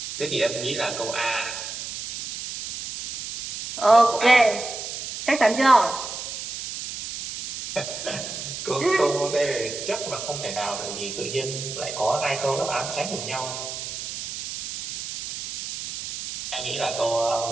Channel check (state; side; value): noise; right; hiss, 7 dB below the sound